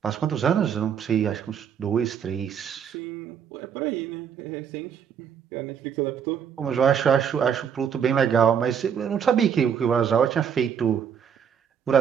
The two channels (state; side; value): quieter; left; 8.0 dB